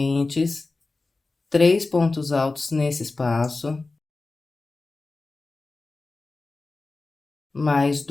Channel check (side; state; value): right; quieter; 3.5 dB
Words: 3 pontos altos nesse espaço, mais